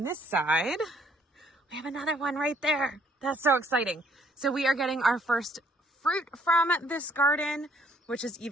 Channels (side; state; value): both; normal; correlation 0.64